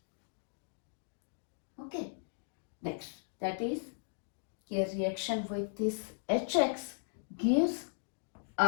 Okay. Next, that is here reaction with this HX gives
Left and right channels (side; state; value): right; silent; digital silence